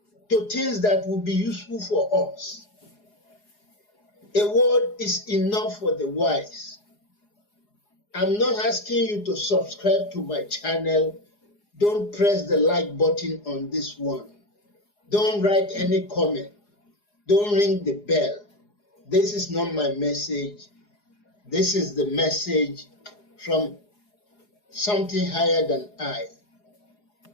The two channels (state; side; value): late; right; 4.8 ms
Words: to things that will be useful for us. A word is enough for the wise. I'm not asking you to subscribe to my channel. Don't press the like button on this one. Don't write any comment. Don't ring the bell. This is not my message. This is the message from something higher than I.